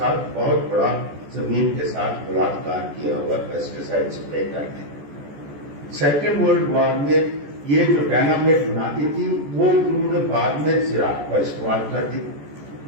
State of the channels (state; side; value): late; left; 14 ms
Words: बहुत बड़ा जमीन के साथ बलात्कार किया हुआ पेस्टिसाइड स्प्रे करके। सेकेंड वर्ल्ड वॉर में ये जो डायनामाइट बनाती थी वो उन्होंने बाद में ज़राअत का इस्तेमाल कर दी